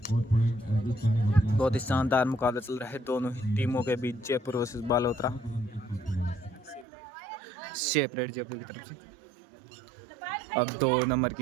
बहुत ही शानदार मुकाबला चल रहा है दोनों ही टीमों के बीच जयपुर वर्सेस बालोतरा। शेप रेड जयपुर की तरफ से। अब 2 नंबर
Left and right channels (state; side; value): drops out; left; at 6.9 s